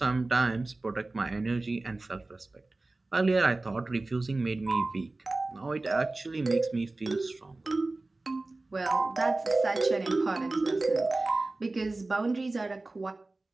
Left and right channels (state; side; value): quieter; left; 3.1 dB